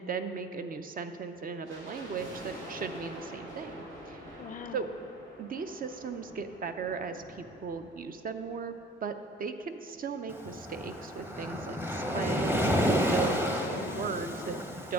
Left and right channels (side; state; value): both; normal; correlation 0.50